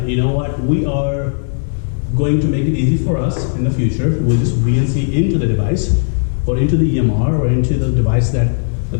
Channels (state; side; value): silent; right; 58 dB below the other